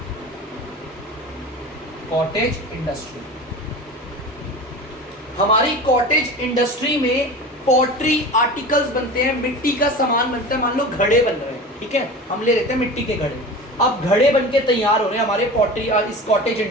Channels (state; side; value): normal; both; correlation 0.33